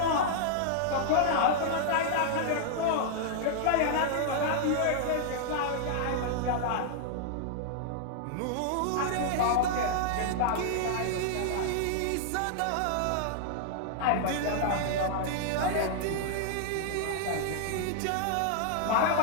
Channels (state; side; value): different; both; correlation -0.01